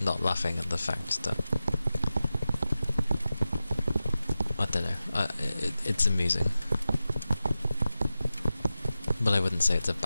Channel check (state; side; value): inverted; both; correlation -0.93